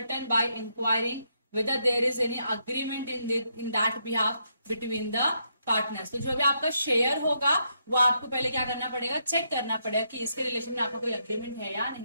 by inquiring whether there is any agreement in that behalf between the partners। तो जो भी आपका शेयर होगा वो आपको पहले क्या करना पड़ेगा? चेक करना पड़ेगा कि इसके रिलेशन में आपका कोई अग्रीमेंट है या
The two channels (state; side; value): inverted; both; correlation -0.77